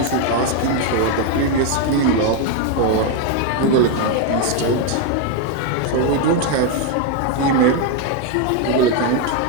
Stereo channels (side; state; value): both; different; correlation 0.01